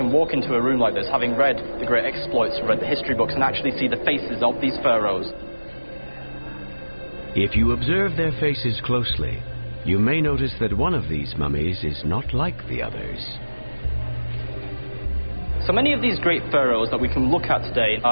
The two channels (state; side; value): inverted; both; correlation -1.00